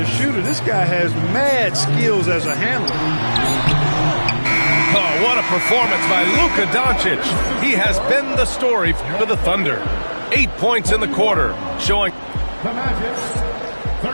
shooter. This guy has mad skills as a handler. Oh, what a performance by Luka Doncic. He has been the story for the Thunder. 8 points in the quarter, showing The Magic,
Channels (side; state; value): both; inverted; correlation -1.00